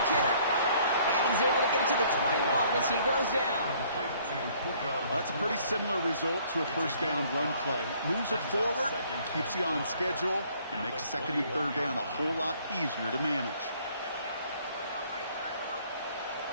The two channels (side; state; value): both; inverted; correlation -0.60